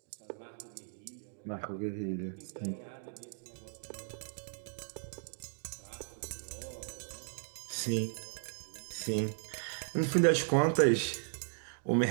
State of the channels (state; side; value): silent; left; digital silence